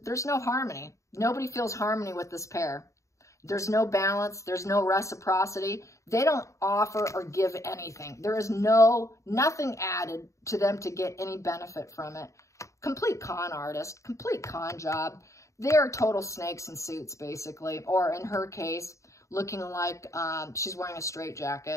there's no harmony. Nobody feels harmony with this pair. There's no balance. There's no reciprocity. They don't offer or give anything. There is nothing added to them to get any benefit from it. Complete con artist, complete con job. They're total snakes in suits, basically. Or in her case, looking like she's wearing a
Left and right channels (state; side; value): late; right; 0.15 ms